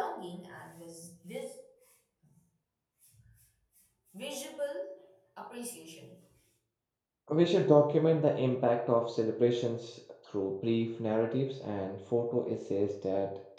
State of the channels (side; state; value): both; identical; correlation 1.00